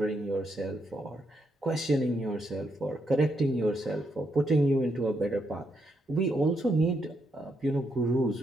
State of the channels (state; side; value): normal; both; correlation 0.79